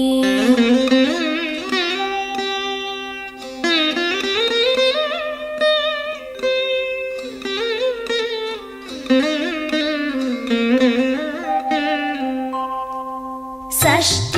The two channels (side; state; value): both; identical; correlation 1.00